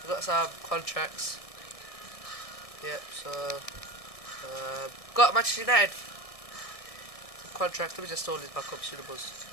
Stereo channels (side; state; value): right; late; 1.6 ms